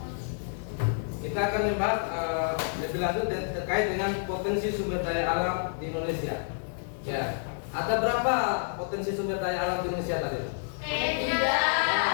kita akan membahas lebih lanjut terkait dengan potensi sumber daya alam di Indonesia. Ya, ada berapa potensi sumber daya alam di Indonesia tadi? Tiga.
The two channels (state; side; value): silent; right; 59 dB below the other